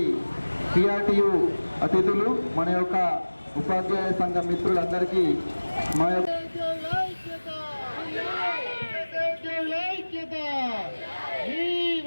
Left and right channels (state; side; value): inverted; both; correlation -1.00